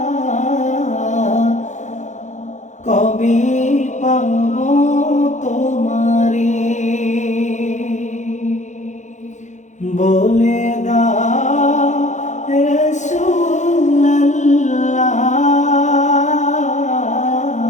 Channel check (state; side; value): late; right; 0.35 ms